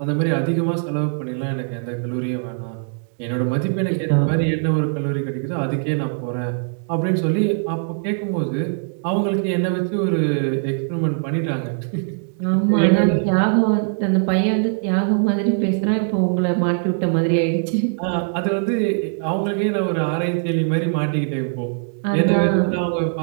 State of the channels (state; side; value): silent; left; digital silence